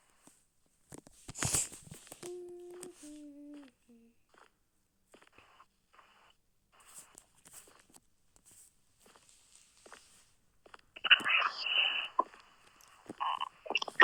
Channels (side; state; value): both; identical; correlation 1.00